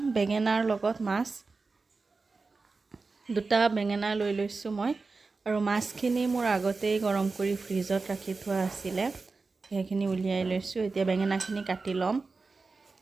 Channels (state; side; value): quieter; left; 4.0 dB